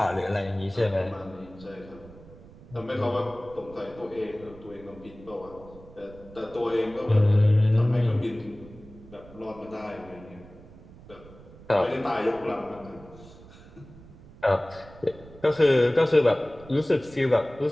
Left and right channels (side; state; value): right; noise; rumble, 20 dB below the sound